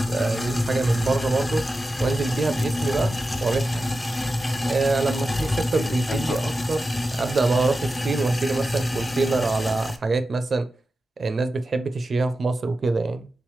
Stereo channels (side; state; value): both; normal; correlation 0.92